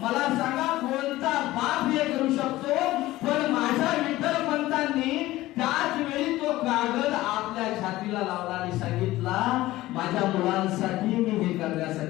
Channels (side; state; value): right; quieter; 17.0 dB